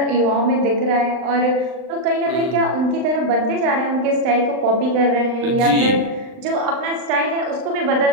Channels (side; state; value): left; late; 39 ms